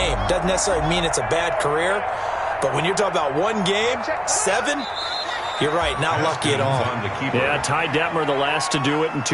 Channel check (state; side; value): identical; both; correlation 1.00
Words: Doesn't necessarily mean it's a bad career, but when you're talking about one game, 7, you're right, not lucky at all. Yeah, Ty Detmer, the last to do it in